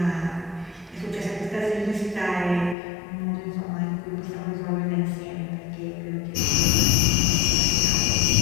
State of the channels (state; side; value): drops out; right; at 2.8 s